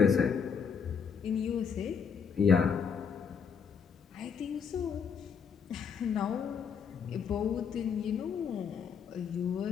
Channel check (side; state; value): right; quieter; 6.7 dB